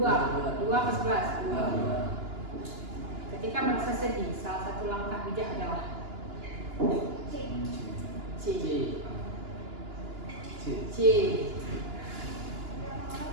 ke 11. 2. Ketika merasa sedih, salah satu langkah bijak adalah C.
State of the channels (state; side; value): late; left; 2.9 ms